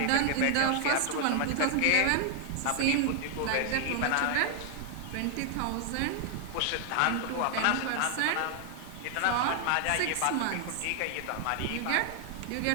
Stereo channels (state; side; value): different; both; correlation 0.00